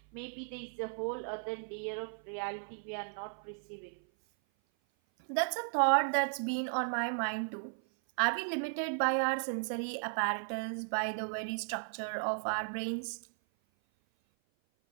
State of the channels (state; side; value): silent; left; 54 dB below the other